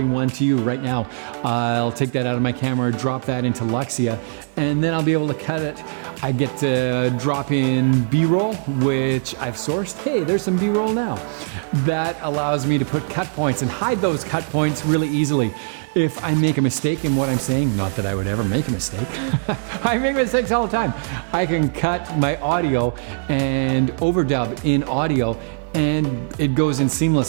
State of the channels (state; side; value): quieter; left; 39.4 dB